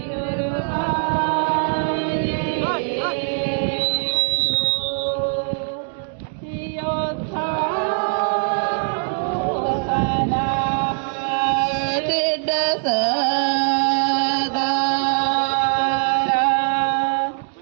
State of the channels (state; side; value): silent; left; 65 dB below the other